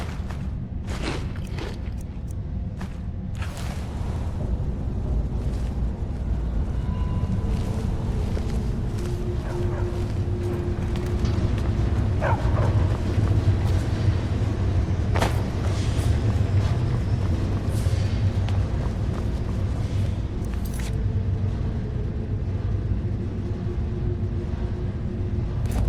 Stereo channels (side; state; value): both; identical; correlation 1.00